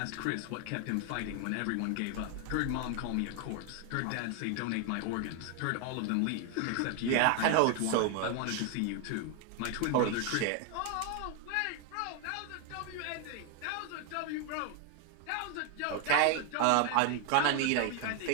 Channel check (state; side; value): different; both; correlation 0.01